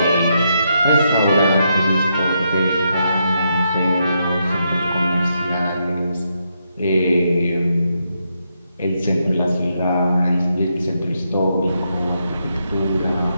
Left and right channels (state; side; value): inverted; both; correlation -0.80